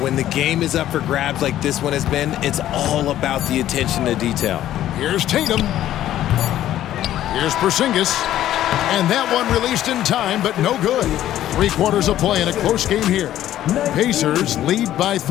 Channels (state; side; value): quieter; right; 12.6 dB